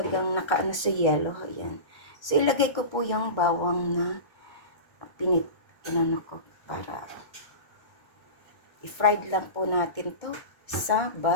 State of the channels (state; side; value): late; right; 1.3 ms